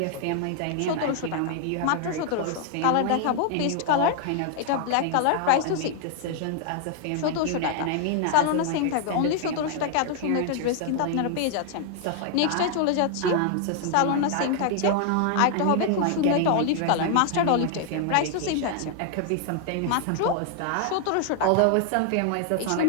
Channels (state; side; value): different; both; correlation 0.00